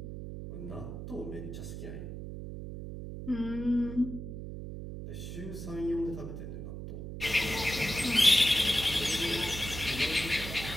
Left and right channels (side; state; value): right; noise; hum, 8 dB below the sound